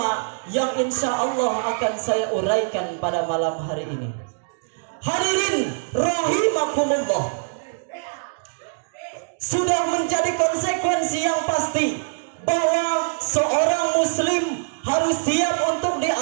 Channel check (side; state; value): left; silent; digital silence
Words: yang insya Allah akan saya uraikan pada malam hari ini. Hadirin rahimakumullah, sudah menjadi sebagai konsekuensi yang pasti bahwa seorang muslim harus siap untuk